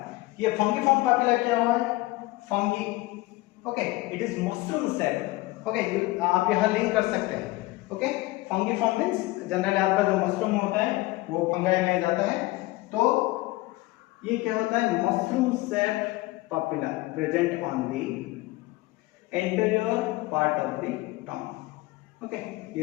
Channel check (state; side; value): quieter; right; 20.1 dB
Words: ये फंगीफॉर्म पापिला क्या हुआ है? Fungi. Okay, it is mushroom shape. Okay, आप यहां लिंक कर सकते हैं। ओके, फंगीफॉर्म मींस जनरली आपका जो मशरूम होता है वो फंगाई में जाता है, तो ये क्या होता है? Mushroom shape papilla present on the anterior part of the tongue. Okay,